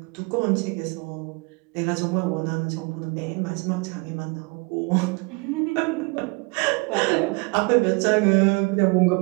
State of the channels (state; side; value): quieter; left; 29.1 dB